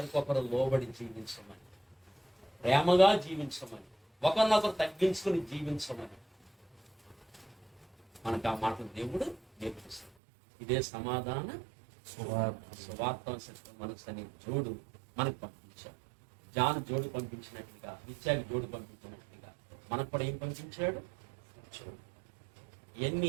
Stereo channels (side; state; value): left; drops out; at 10.1 s